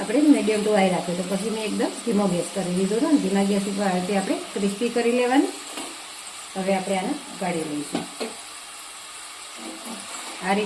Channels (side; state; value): both; identical; correlation 1.00